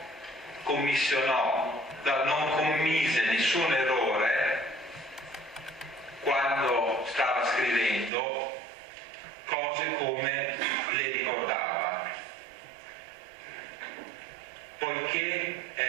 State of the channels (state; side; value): drops out; left; at 8.1 s